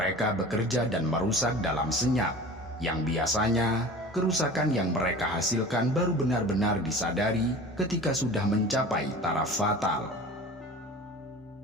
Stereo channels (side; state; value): both; normal; correlation 0.39